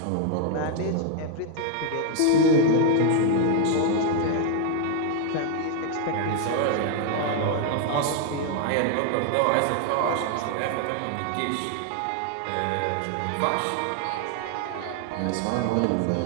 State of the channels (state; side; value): different; both; correlation 0.00